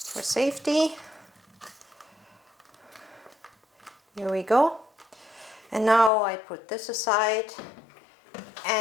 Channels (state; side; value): drops out; right; at 6.1 s